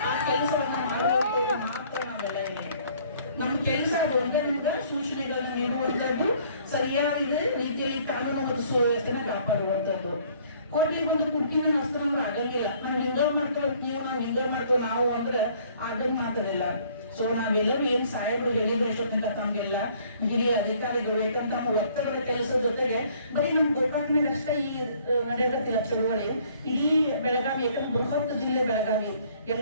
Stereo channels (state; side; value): inverted; both; correlation -0.59